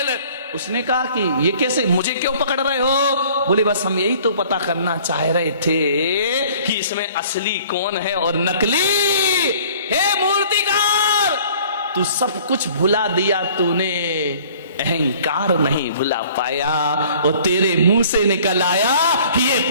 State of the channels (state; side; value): inverted; both; correlation -0.53